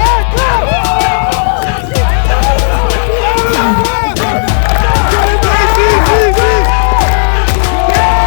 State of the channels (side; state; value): right; silent; digital silence